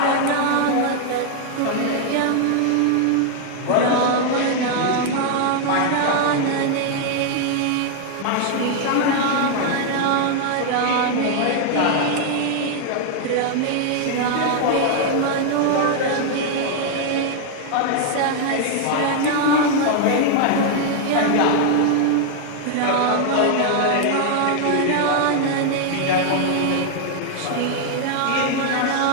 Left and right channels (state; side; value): different; both; correlation 0.00